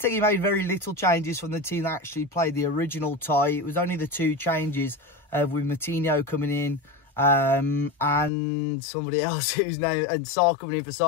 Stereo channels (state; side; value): drops out; right; at 8.3 s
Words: made very little changes from the team that actually played the original tie. It was only the 2 changes with Moutinho coming in and somebody else whose name, and Sarr coming in for